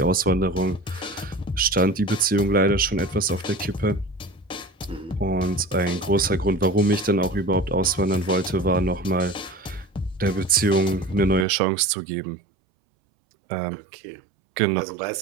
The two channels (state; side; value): drops out; left; at 11.5 s